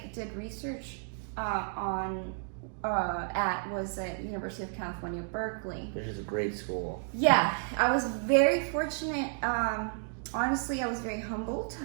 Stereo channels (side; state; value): left; silent; 56 dB below the other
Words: did research at was at University of California, Berkeley. Which is a great school. Yeah, I was very fortunate. Honestly, I was very humbled